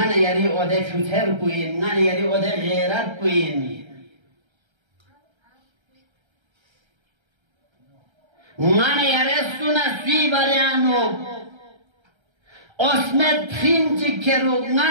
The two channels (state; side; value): late; left; 1.3 ms